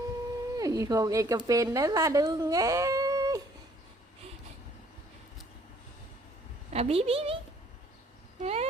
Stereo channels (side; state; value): both; normal; correlation 0.61